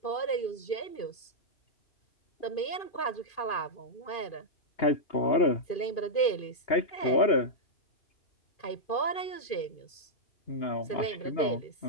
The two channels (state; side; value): late; right; 2.5 ms